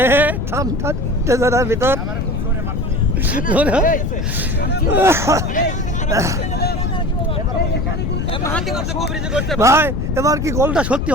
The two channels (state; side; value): noise; left; rumble, 3 dB below the sound